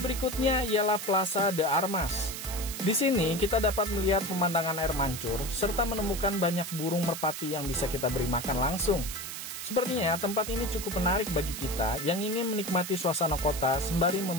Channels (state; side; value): noise; right; hiss, 7 dB below the sound